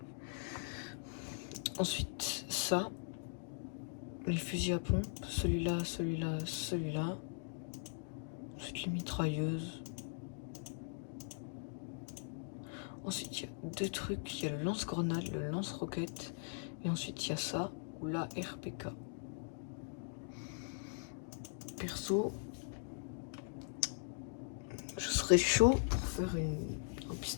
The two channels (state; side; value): silent; right; digital silence